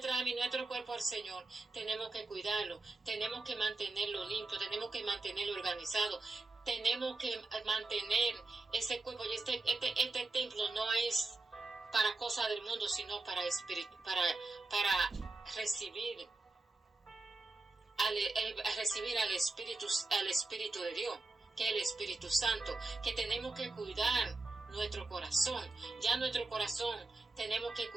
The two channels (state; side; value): quieter; left; 3.2 dB